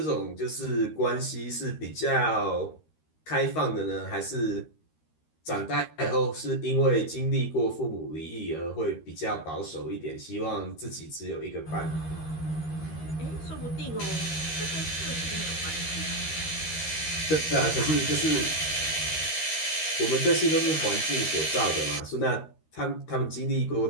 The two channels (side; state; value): right; late; 13 ms